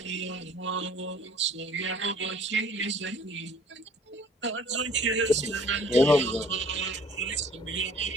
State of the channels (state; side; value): normal; both; correlation 0.53